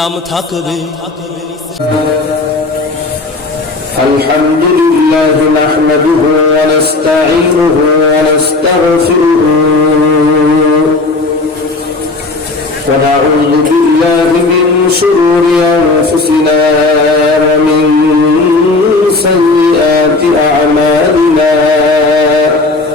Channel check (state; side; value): quieter; right; 3.4 dB